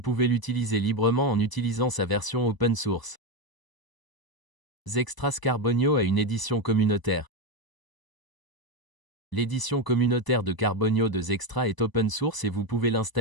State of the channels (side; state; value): right; late; 1.0 ms